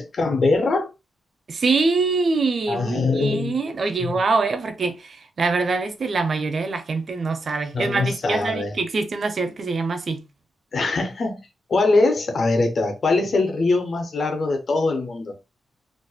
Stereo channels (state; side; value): normal; both; correlation 0.83